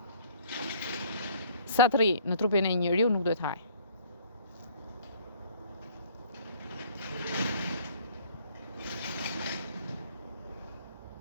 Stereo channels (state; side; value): inverted; both; correlation -0.55